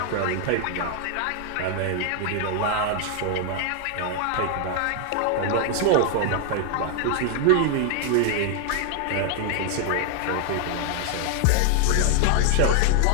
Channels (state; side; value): different; both; correlation 0.00